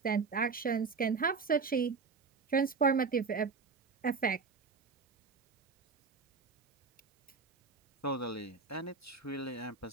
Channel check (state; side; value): quieter; left; 4.9 dB